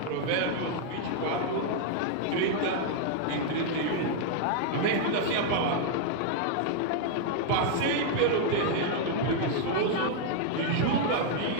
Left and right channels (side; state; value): both; different; correlation 0.00